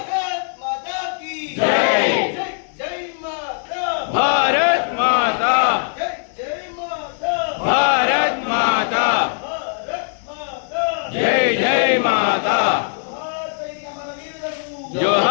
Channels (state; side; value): silent; right; 66 dB below the other